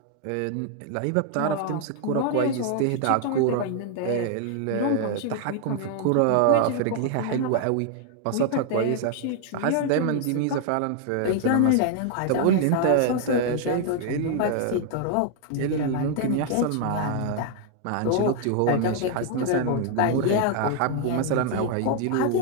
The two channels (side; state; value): both; different; correlation 0.00